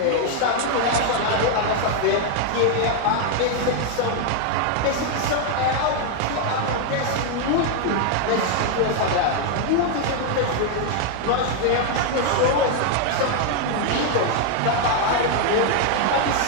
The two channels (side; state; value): both; different; correlation 0.00